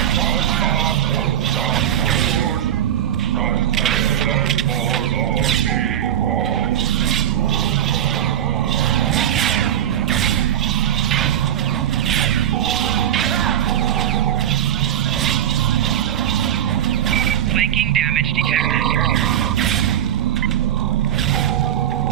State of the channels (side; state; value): left; quieter; 10.8 dB